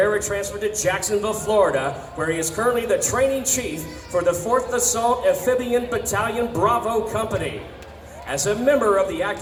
transferred to Jacksonville, Florida, where he is currently the training chief for the 4th Assault Amphibian Battalion Bravo Company. As a member of the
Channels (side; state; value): both; identical; correlation 1.00